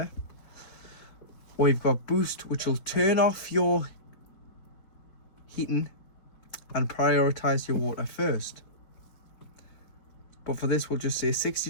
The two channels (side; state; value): right; late; 4.8 ms